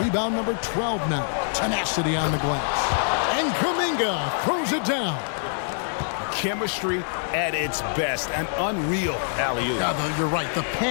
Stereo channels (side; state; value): right; silent; digital silence